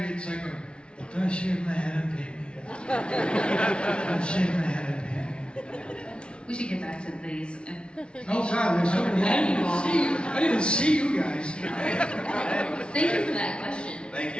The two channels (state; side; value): late; right; 0.057 ms